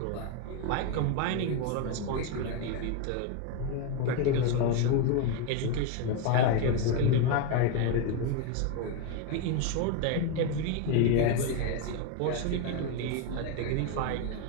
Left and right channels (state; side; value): different; both; correlation 0.02